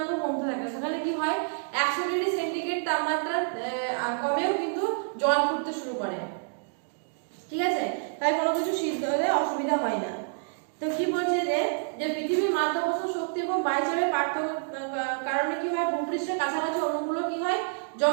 কমতে থাকে। সেখানে কি হয় 100 ডিগ্রি সেন্টিগ্রেড তাপমাত্রা কমেও কিন্তু জল ফুটতে শুরু করে। ঠিক আছে, তাই কোনো কিছু সিদ্ধ হলে অসুবিধা হয় না। তো কি বলছে যে পৃথিবীর মাধ্যাকর্ষণ শক্তি এবং বায়ুচাপের পার্থক্য কারণে কি হয় ভূপৃষ্ঠের কাছাকাছি অণুগুলো কি হয়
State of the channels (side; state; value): left; silent; digital silence